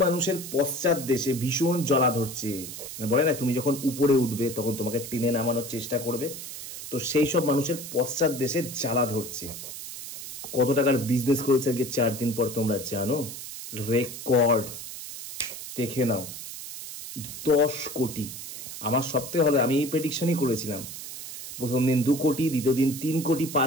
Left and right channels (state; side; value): noise; right; hiss, 10 dB below the sound